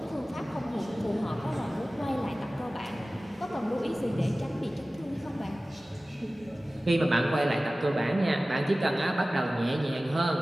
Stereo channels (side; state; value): both; normal; correlation 0.97